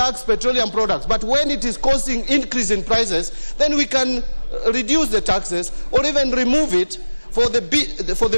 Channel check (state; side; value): inverted; both; correlation -1.00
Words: petroleum products. But when it is causing increase in prices, then we can reduce the taxes or even remove it for